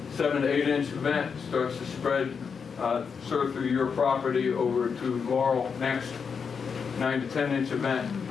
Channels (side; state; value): right; quieter; 6.1 dB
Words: 7 to 8 inch event starts to spread sort of through your property over to Laurel. Next. 9 to 10 inch event,